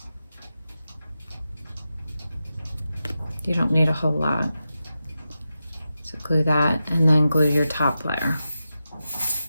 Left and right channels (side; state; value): both; inverted; correlation -0.91